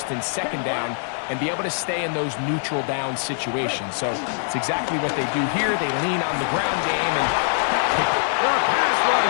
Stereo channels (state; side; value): silent; right; digital silence